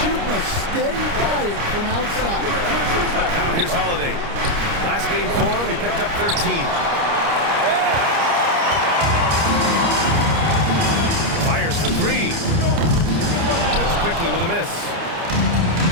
a steady diet from outside. Now here's Holiday. Last game for him, he picked up 13. Fires for 3. And it's Quickly with a miss.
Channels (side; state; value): left; late; 29 ms